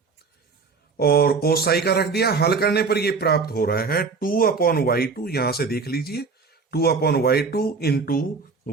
और कोस साई का रख दिया। हल करने पर ये प्राप्त हो रहा है 2 अपॉन y2, यहां से देख लीजिए 2 upon y2 into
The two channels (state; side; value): quieter; left; 4.7 dB